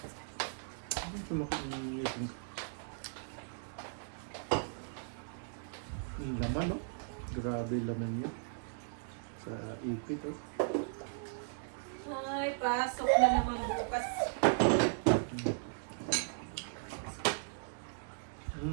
Sumakot ng ngipin ko. Yung laman, no? Grabe yung laman niya. Sa ipit, oh. Ay, pasok na naman bukas.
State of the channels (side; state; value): left; silent; digital silence